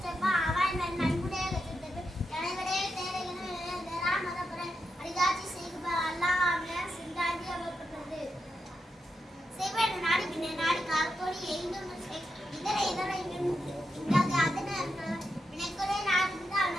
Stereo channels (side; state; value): both; normal; correlation 0.86